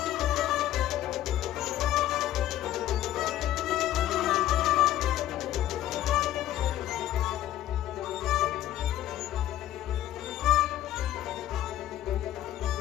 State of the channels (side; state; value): right; quieter; 13.0 dB